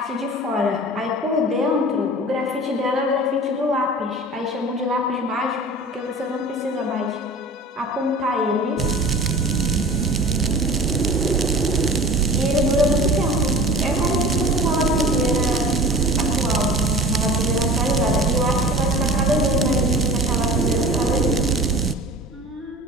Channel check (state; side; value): normal; both; correlation 0.39